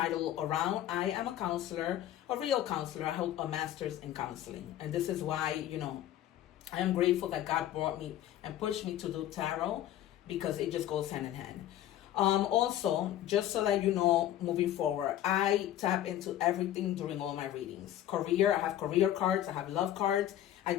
around. I am a counselor, a real counselor. I hold a master's in counseling. And this is why, I am grateful that God brought me and pushed me to do tarot, because it just goes hand in hand. Also, just so that you know, moving forward, I tap into everything during all my readings. Career, I have career cards, I have love cards, I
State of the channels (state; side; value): quieter; right; 12.4 dB